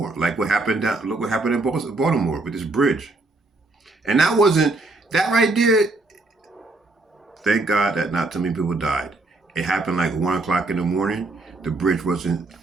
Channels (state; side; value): quieter; left; 3.1 dB